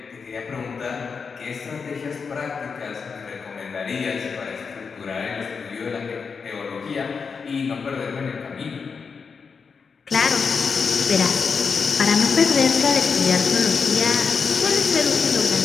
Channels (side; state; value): right; quieter; 5.5 dB